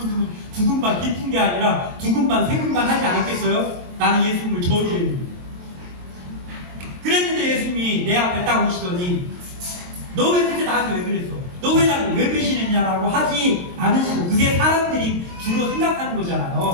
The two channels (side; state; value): left; late; 22 ms